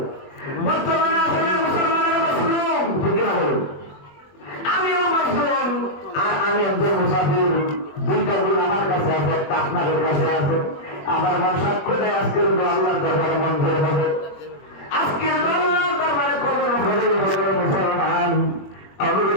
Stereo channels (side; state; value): right; late; 21 ms